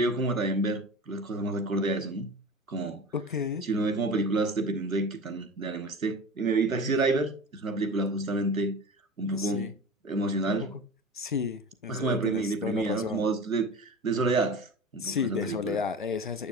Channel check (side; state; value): both; normal; correlation 0.34